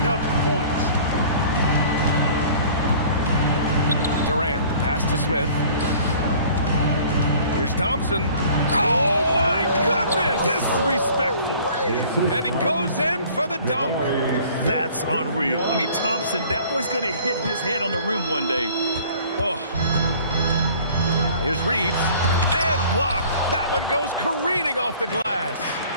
up the points. Pass to Smith. Here's Thompson. Oh, my goodness! Disrespectful. And he goes in for the dunk. That's unreal. I mean, Thompson, that boy's going to hit his head on the rim one day. Oh. Here's Reeves. And blocked. That one goes careening off the glass.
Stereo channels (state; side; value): inverted; both; correlation -0.50